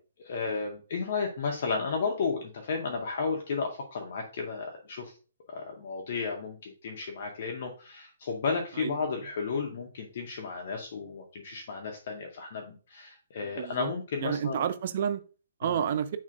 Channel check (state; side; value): inverted; both; correlation -0.60